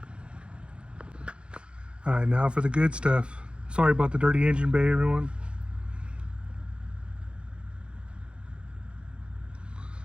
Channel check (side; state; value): left; late; 0.056 ms